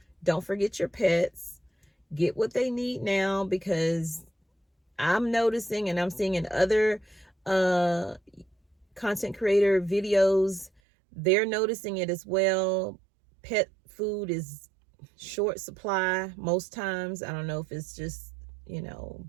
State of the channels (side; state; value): left; drops out; at 10.7 s